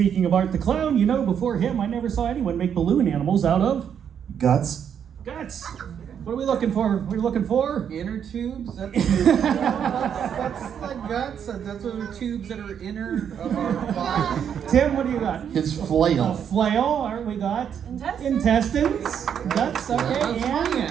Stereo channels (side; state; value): left; quieter; 8.3 dB